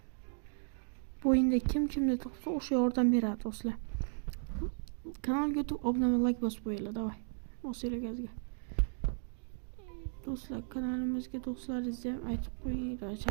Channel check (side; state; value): left; silent; digital silence